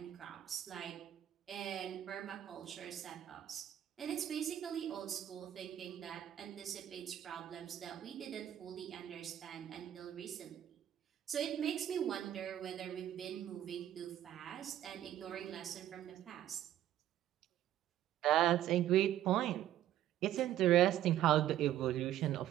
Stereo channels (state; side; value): quieter; left; 12.1 dB